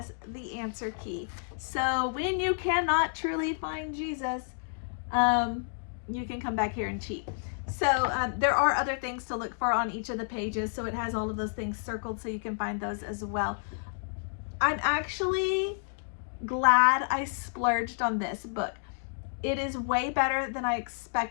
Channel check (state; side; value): silent; right; digital silence